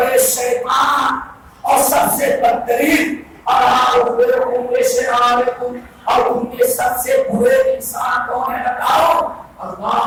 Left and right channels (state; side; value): identical; both; correlation 1.00